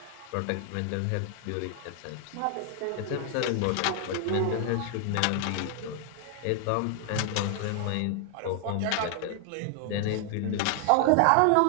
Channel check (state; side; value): different; both; correlation 0.00